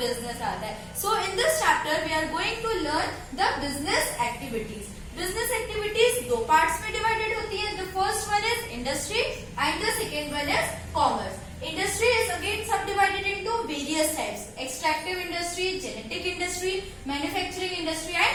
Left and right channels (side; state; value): both; identical; correlation 1.00